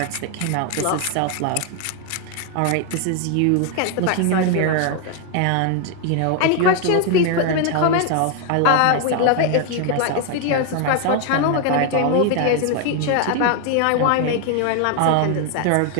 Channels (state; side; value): different; both; correlation 0.01